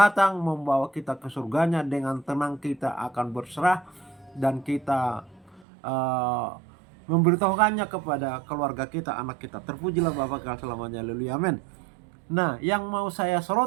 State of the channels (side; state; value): left; drops out; at 5.7 s